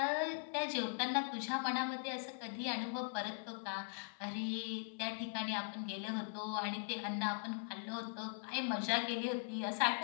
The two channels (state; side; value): silent; right; 51 dB below the other